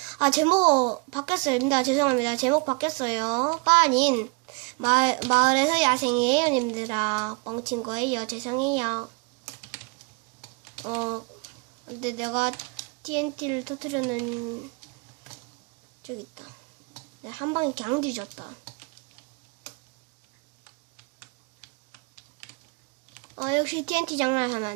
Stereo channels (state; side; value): quieter; left; 32.0 dB